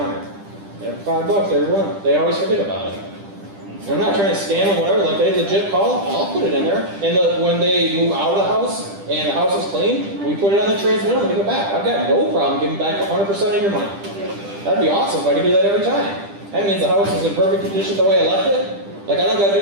Every $5, they always forget about it. I'm not trying to scam them, whatever. Like, they legit call, I'll put it in there. And when they move out of the house and the house is clean, we put it on the transmitter and give it back. I've got no problem giving back 100% of your money. That'd be awesome if I could do that every time. That means the house is in perfect condition the way I left it. Like, I don't got to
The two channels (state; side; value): late; left; 10 ms